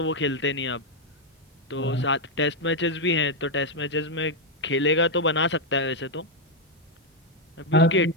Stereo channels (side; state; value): both; normal; correlation 0.01